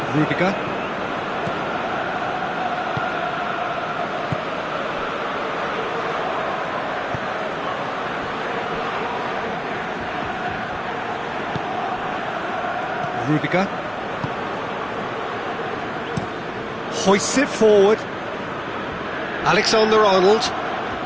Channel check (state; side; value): noise; right; rumble, 25 dB below the sound